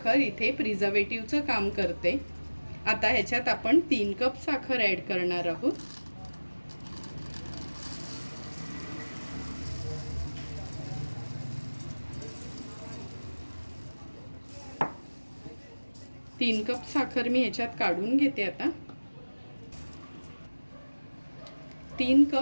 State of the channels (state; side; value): inverted; both; correlation -1.00